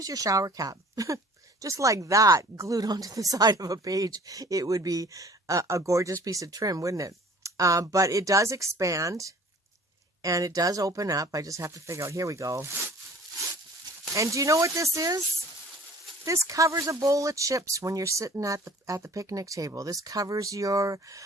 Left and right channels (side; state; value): both; normal; correlation 0.50